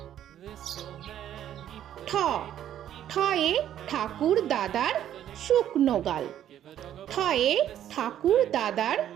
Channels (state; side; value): quieter; left; 11.0 dB